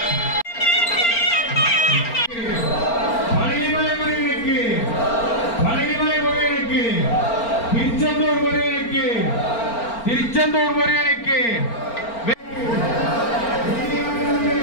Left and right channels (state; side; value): late; right; 4.4 ms